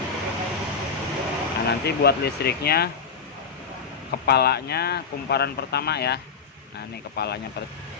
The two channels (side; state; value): right; quieter; 5.6 dB